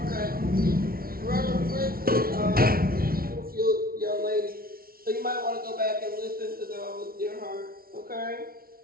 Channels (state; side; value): late; left; 0.43 ms